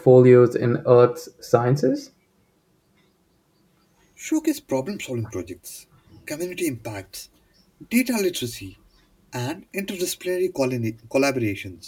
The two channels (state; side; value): identical; both; correlation 1.00